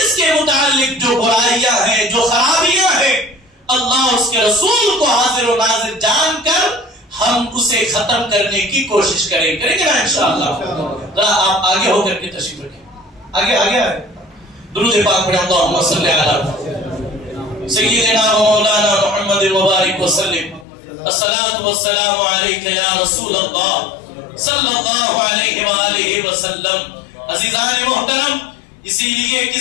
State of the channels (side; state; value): right; drops out; at 20.7 s